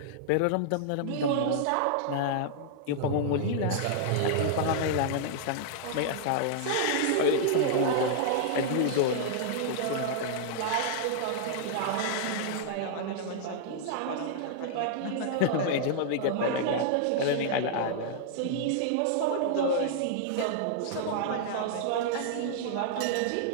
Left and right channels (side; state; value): both; different; correlation -0.01